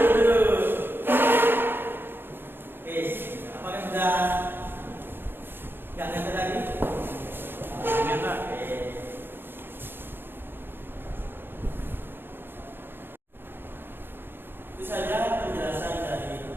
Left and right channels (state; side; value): late; left; 0.10 ms